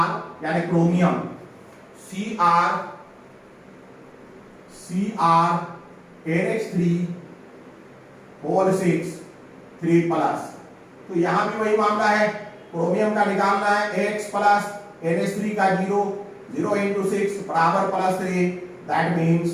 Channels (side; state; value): both; identical; correlation 1.00